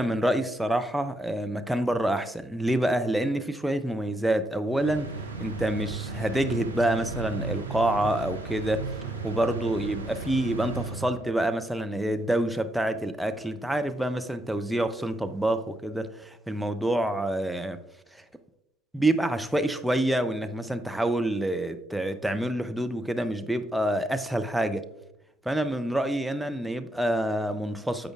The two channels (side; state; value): both; normal; correlation 0.79